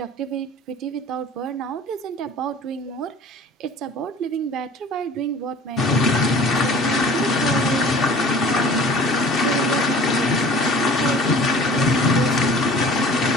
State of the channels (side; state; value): both; normal; correlation 0.45